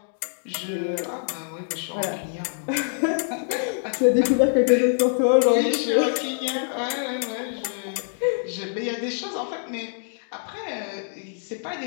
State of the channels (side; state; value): right; silent; digital silence